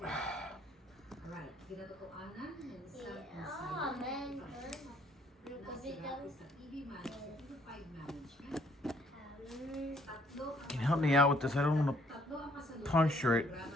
Can you help me out with this? I don't want to puncture it.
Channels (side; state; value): both; normal; correlation 0.64